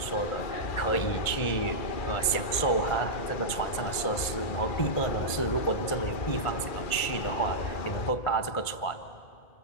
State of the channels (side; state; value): right; late; 1.5 ms